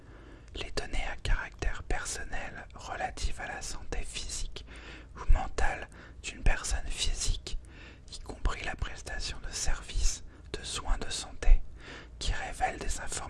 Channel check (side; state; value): both; identical; correlation 1.00